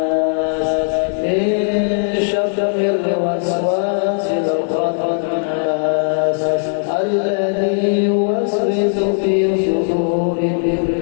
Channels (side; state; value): right; silent; digital silence